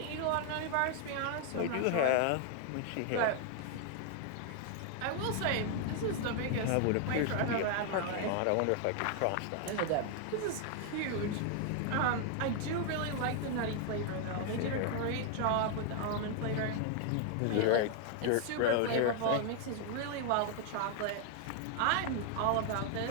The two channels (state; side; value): different; both; correlation 0.00